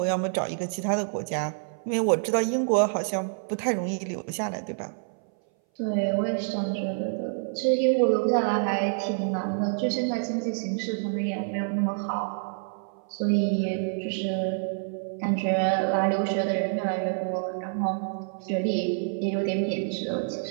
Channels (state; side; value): silent; left; 59 dB below the other